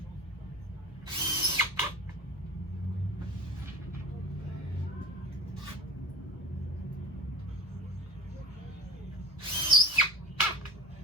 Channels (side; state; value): both; normal; correlation 0.31